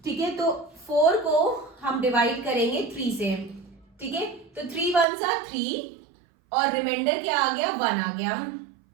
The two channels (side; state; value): left; drops out; at 5.1 s